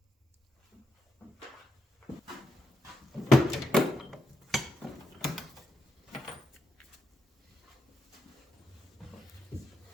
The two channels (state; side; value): normal; both; correlation 0.83